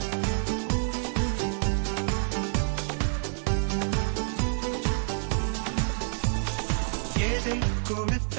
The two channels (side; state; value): left; silent; digital silence